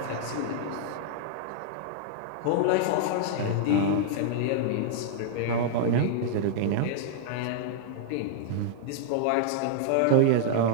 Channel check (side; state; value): both; different; correlation -0.01